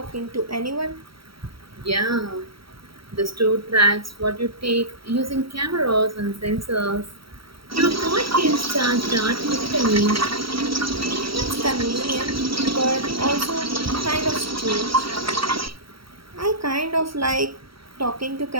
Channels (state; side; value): late; left; 0.75 ms